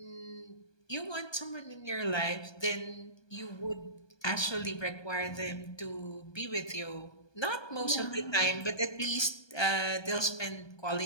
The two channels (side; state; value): right; late; 1.2 ms